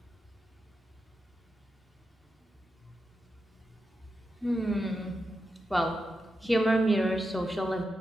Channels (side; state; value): both; normal; correlation 0.88